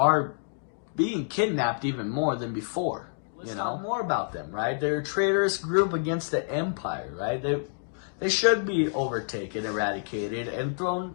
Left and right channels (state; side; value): silent; right; digital silence